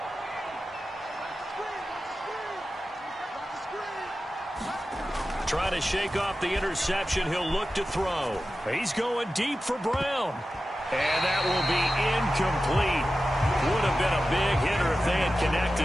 Trying to shake off the interception. He'll look to throw. He's going deep for Brown. And that will be incomplete. Would have been a big hitter if they had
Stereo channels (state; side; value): normal; both; correlation 0.93